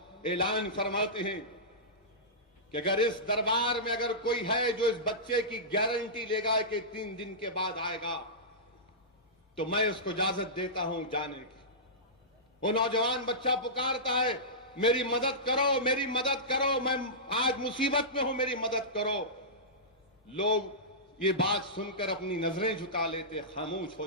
اعلان فرماتے ہیں کہ اگر اس دربار میں اگر کوئی ہے جو اس بچے کی گارنٹی لے گا کہ 3 دن کے بعد آئے گا تو میں اس کو اجازت دیتا ہوں جانے کی۔ وہ نوجوان بچہ پکارتا ہے، میری مدد کرو، میری مدد کرو، میں آج مصیبت میں ہوں، میری مدد کرو۔ لوگ یہ بات سن کر اپنی نظریں جھکا لیتے، خاموش ہو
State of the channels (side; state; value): both; normal; correlation -0.17